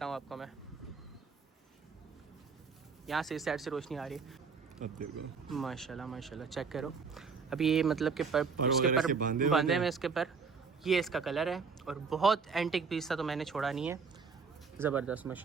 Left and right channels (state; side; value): quieter; left; 5.3 dB